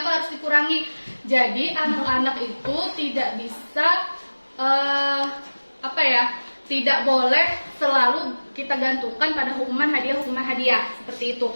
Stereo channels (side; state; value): both; inverted; correlation -1.00